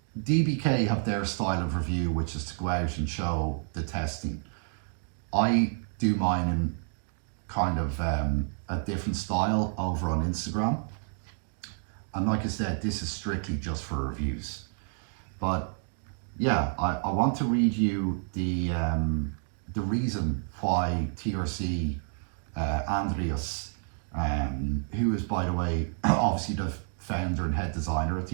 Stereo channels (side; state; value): left; silent; 56 dB below the other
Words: DBK have their style of review, which is to go out and show the testing. I do mine in kind of a different style over on Instagram. And like I said, this is strictly just for reviews. But yeah, I want to read you the reason why TRC Andreas, who is, by the way, obviously the founder and head designer at